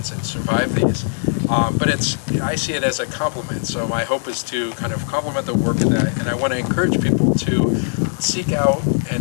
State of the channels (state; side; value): silent; right; digital silence